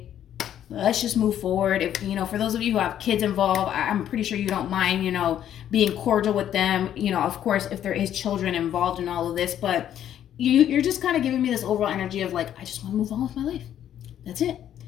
Let's just move forward. If, you know, for those of you who have kids involved, I'm pretty sure you don't mind, you know, being cordial with them. You know, of course, if there is children involved in all of this, but you're just kind of giving me this overall energy of like, I just want to move on with my life. That's it.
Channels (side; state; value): right; quieter; 10.6 dB